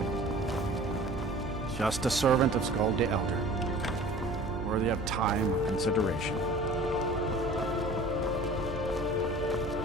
Just a servant of Skald the Elder, worthy of time or consideration.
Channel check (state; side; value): noise; right; hum, 10 dB below the sound